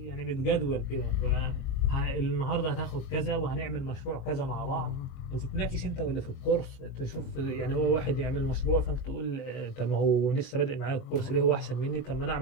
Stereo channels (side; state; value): right; late; 22 ms